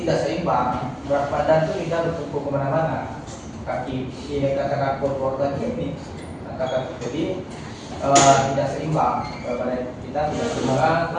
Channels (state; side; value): identical; both; correlation 1.00